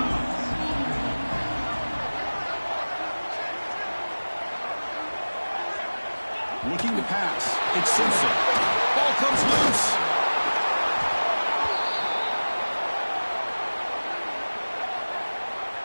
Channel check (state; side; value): inverted; both; correlation -1.00